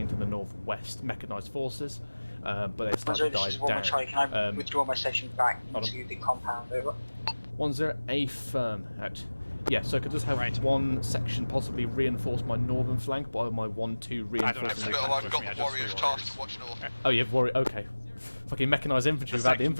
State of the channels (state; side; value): inverted; both; correlation -1.00